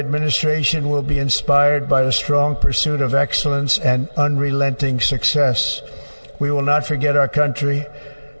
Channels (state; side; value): inverted; both; correlation -1.00